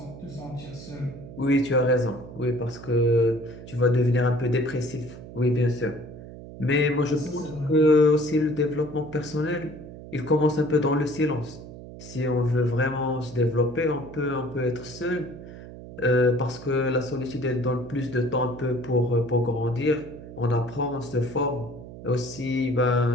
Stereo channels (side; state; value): right; noise; hum, 14 dB below the sound